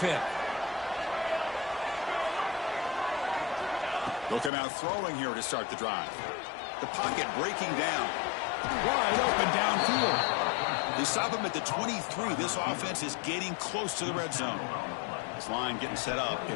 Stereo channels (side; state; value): right; drops out; at 4.5 s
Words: They'll come out throwing here to start the drive. The pocket breaking down. Wide open downfield. They stop him at the 23. This offense is getting close to the red zone. This line getting set up.